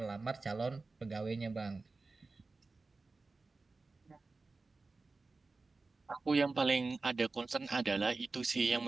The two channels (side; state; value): left; quieter; 3.7 dB